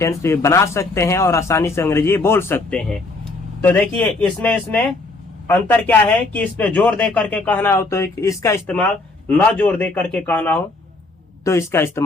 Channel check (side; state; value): right; quieter; 3.3 dB